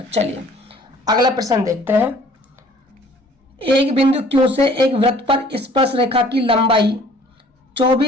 चलिए अगला प्रश्न देखते हैं, एक बिंदु Q से एक वृत्त पर स्पर्श रेखा की लंबाई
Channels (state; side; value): normal; both; correlation 0.54